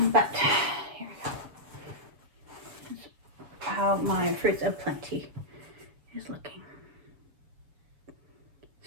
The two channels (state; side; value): late; left; 7.0 ms